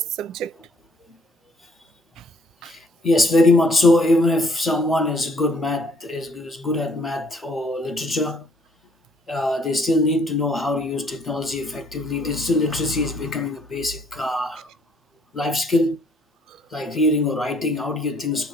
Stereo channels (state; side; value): normal; both; correlation 0.63